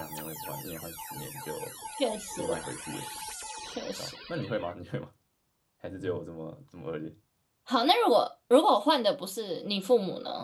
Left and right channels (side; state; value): both; identical; correlation 1.00